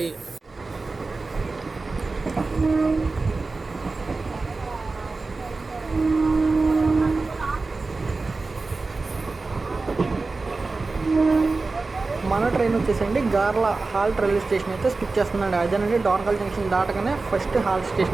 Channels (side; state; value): left; quieter; 3.7 dB